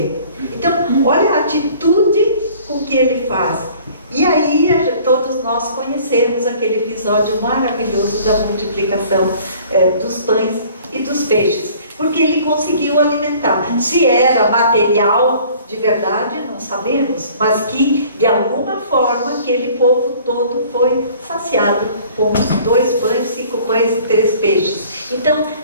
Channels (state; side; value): inverted; both; correlation -0.52